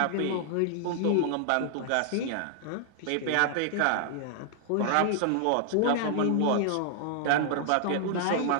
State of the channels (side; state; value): both; different; correlation 0.00